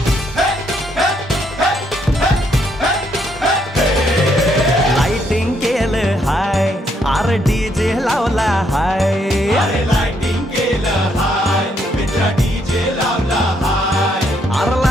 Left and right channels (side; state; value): both; normal; correlation 0.73